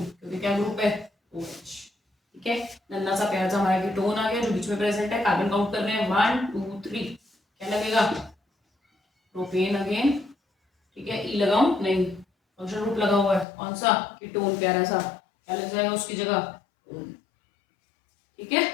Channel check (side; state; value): right; drops out; at 13.5 s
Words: क्या ग्रुप है? OH। ठीक है, नन्ना सा प्यारा सा हमारा कीटोन आ गया जो बीच में प्रेजेंट है। कार्बन काउंट कर रहे हैं 1 2 3, क्या लगेगा, प्रोपेन अगेन, ठीक है। ई लगाऊं, नहीं, फंक्शनल ग्रुप लगा हुआ है कौन सा, कीटोन, प्यारा सा, क्या लग जाएगा उसकी जगह, ठीक है।